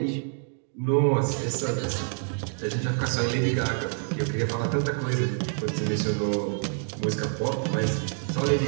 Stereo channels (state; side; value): silent; left; 60 dB below the other